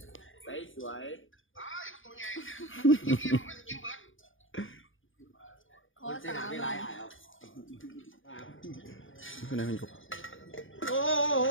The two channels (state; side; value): late; right; 0.58 ms